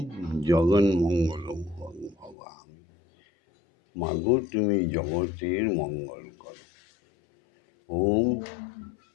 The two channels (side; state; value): right; drops out; at 2.4 s